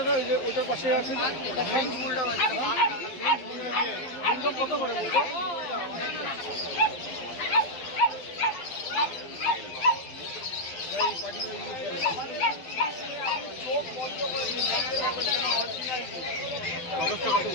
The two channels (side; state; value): right; late; 12 ms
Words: ওই যে ওটার পাশে আছে কত করে বলবো?